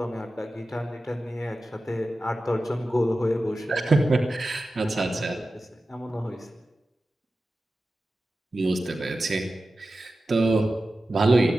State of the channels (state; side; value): normal; both; correlation 0.94